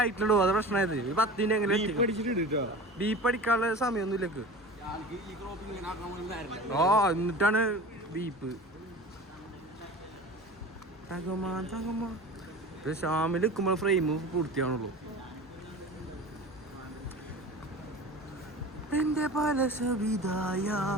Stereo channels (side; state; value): both; normal; correlation 0.36